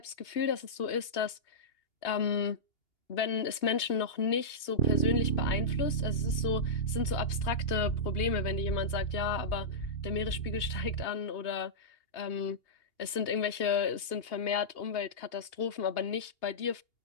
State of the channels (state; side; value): late; right; 2.8 ms